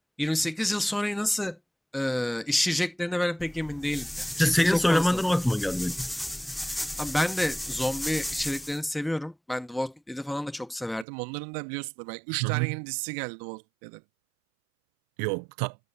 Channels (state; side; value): drops out; left; at 11.1 s